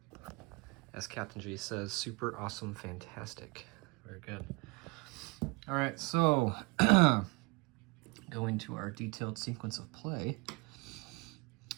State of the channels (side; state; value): left; quieter; 28.3 dB